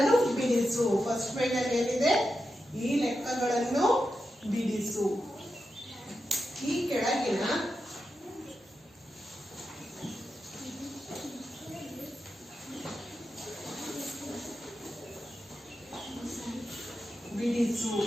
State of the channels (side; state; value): both; normal; correlation 0.89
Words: ಬಿಡಿಸು. ಫಸ್ಟ್ ಪೇಜಲ್ಲಿ ಏನಿದೆ, ಈ ಲೆಕ್ಕಗಳನ್ನು ಬಿಡಿಸು. ಈ ಕೆಳಗಿನ ಬಿಡಿಸು.